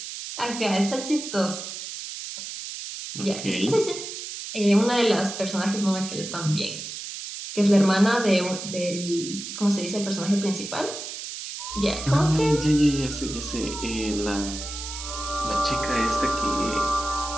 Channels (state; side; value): noise; right; hiss, 8 dB below the sound